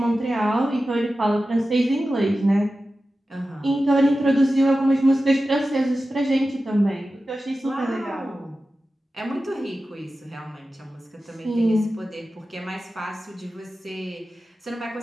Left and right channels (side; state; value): both; normal; correlation 0.94